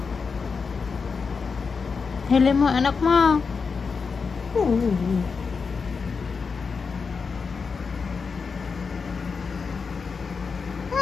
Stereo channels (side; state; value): right; quieter; 5.2 dB